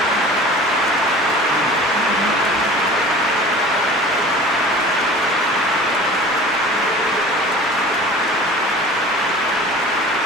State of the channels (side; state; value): both; normal; correlation 0.42